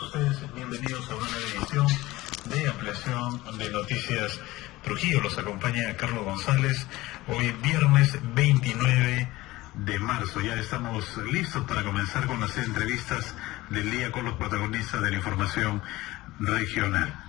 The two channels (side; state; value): right; quieter; 18.7 dB